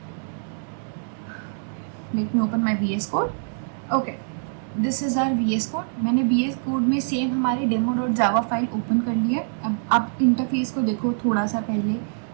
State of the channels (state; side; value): silent; left; digital silence